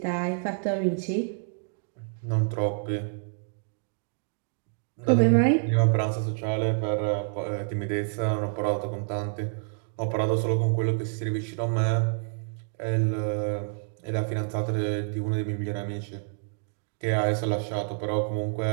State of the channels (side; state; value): left; silent; digital silence